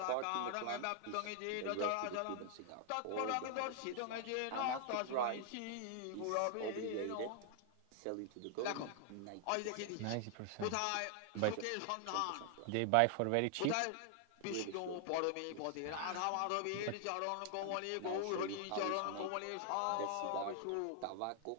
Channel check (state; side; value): different; both; correlation 0.00